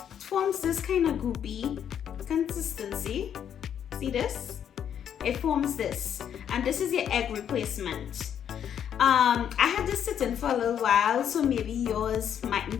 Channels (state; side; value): quieter; right; 9.0 dB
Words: forms this kind of goopy consistency. See this? It forms this, and this is your egg replacement. I had this sitting for a little while, so maybe yours mightn't